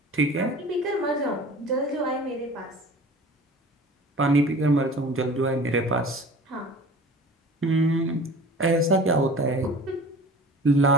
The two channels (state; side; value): normal; both; correlation 0.42